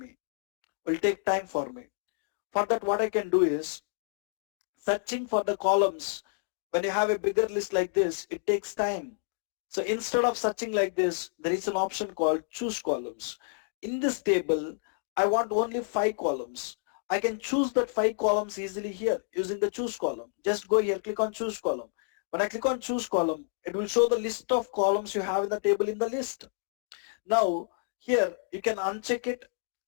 For that, what I can do is searching for the columns. When you have a bigger list like this, it takes time. So instead of searching like this, there is an option called choose columns. In this table, I want only 5 columns. I can choose that 5 columns easily here using the choose column. Just go here, click on choose column. When I click on choose column, it will show the list of columns you have in the table in the list. Now here you can uncheck it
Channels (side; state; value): right; silent; digital silence